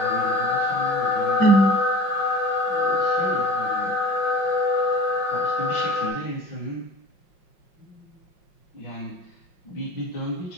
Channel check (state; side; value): late; right; 5.5 ms